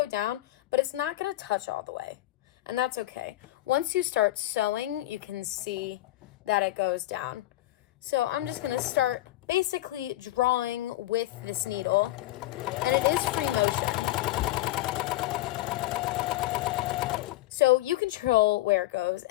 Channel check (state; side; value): quieter; right; 16.2 dB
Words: down, but it's not gonna touch all the way, and that's okay. Once you start sewing, you can see that it goes down. So I'm just gonna start basically drawing with this needle, and it is free motion. So you control where it goes,